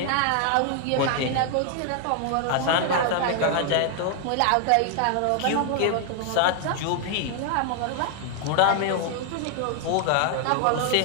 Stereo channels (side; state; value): both; different; correlation 0.00